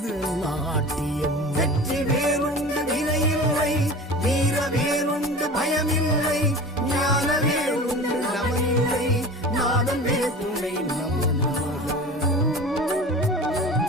நாட்டியம். வெற்றி வேறுண்டு வினையில்லை, வீர வேறுண்டு பயமில்லை, ஞான வேறுண்டு நமனில்லை, நாதன் வேதுணை நமனாக.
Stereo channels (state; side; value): normal; both; correlation 0.36